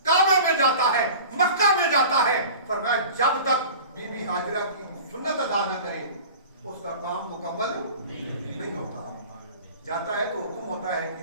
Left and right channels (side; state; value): both; inverted; correlation -0.40